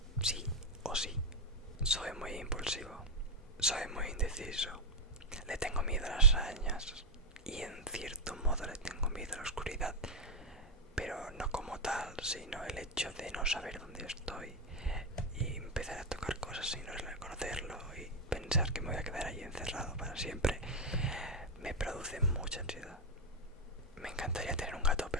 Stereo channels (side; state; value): both; normal; correlation 0.02